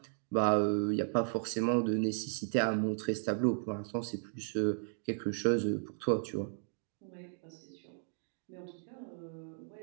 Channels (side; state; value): left; silent; 54 dB below the other